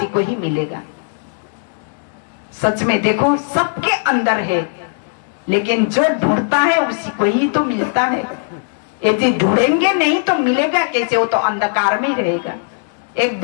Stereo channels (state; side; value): silent; right; digital silence